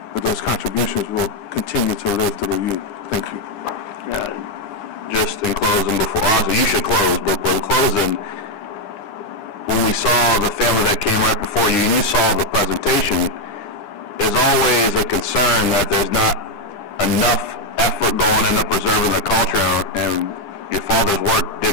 but those contributions will continue to live through you. Thank you. Yeah, just in closing, obviously you should close, but in closing, when we saw the family that came right before you and you saw the presentation, there's always a concern that there's not enough effort going into preserving the culture, and your father's work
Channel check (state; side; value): late; right; 9.9 ms